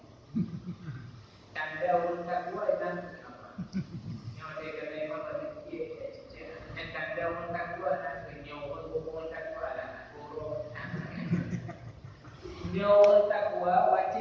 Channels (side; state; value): both; identical; correlation 1.00